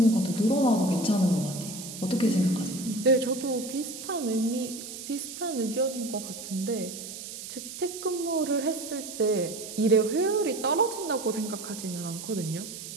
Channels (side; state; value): right; noise; hiss, 10 dB below the sound